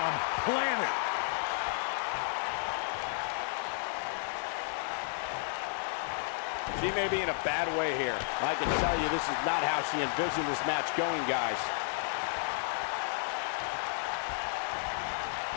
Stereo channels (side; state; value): right; silent; digital silence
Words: planted. She may be in a bad way here. I can tell you this is not how she envisioned this match going, guys.